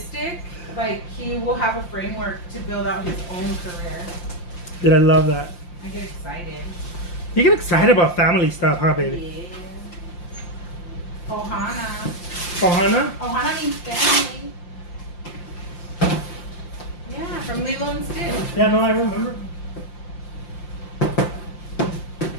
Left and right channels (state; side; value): late; right; 5.7 ms